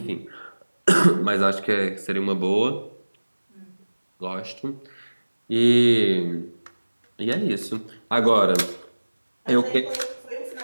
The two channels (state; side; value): inverted; both; correlation -1.00